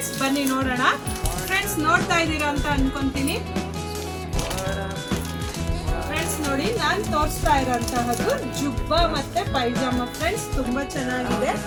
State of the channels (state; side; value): identical; both; correlation 1.00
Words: ಬನ್ನಿ ನೋಡೋಣ. ಫ್ರೆಂಡ್ಸ್, ನೋಡ್ತಾ ಇದ್ದೀರಾ ಅಂತ ಅನ್ಕೊಂತೀನಿ. ಫ್ರೆಂಡ್ಸ್ ನೋಡಿ, ನಾನು ತೋರಿಸ್ತಾ ಇರೋಂತಹದ್ದು ಜುಬ್ಬಾ ಮತ್ತೆ ಪೈಜಾಮ. ಫ್ರೆಂಡ್ಸ್, ತುಂಬಾ ಚೆನ್ನಾಗಿದೆ.